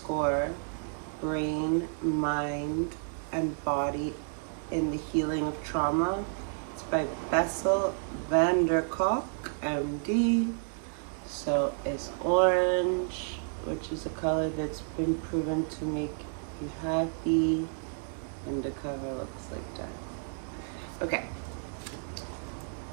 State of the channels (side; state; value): left; silent; 57 dB below the other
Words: brain, mind, and body in the healing of trauma. It's by Bessel Van Der Kolk, MD. So it's orange, which is a color that's been proven to make you happy, and the cover looks like that. Okay.